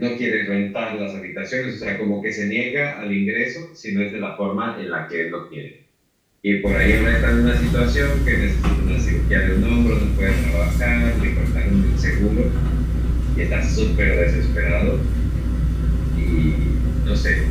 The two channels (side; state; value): both; identical; correlation 1.00